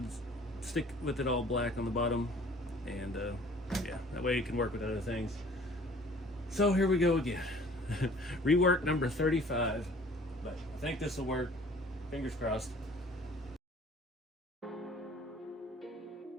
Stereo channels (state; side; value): normal; both; correlation 0.51